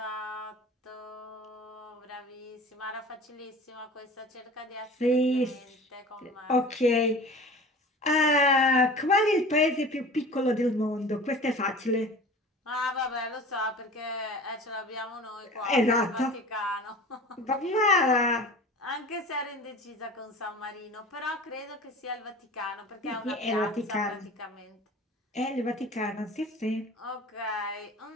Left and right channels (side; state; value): both; normal; correlation 0.39